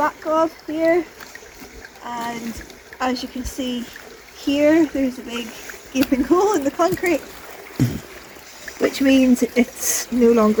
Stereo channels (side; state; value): both; identical; correlation 1.00